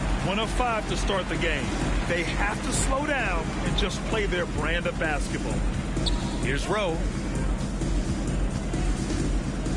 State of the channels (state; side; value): identical; both; correlation 1.00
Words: of 5 to start the game. They have to slow down and just play their brand of basketball. Here's Rowe.